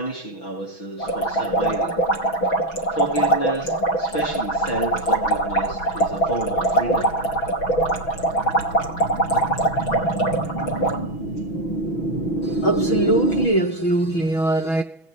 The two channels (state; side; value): late; right; 6.1 ms